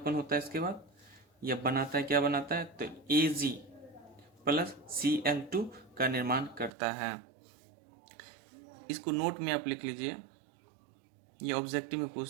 होता है, इसके बाद यह बनाता है, क्या बनाता है, तो Ag प्लस Cl2 का निर्माण करता है। इसको नोट में आप लिख लीजिए, ये ऑब्जेक्टिव में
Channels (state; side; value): drops out; left; at 6.7 s